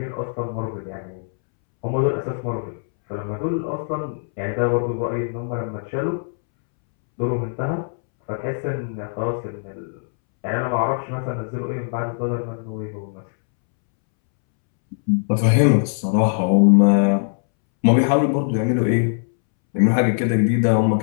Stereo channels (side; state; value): right; silent; 65 dB below the other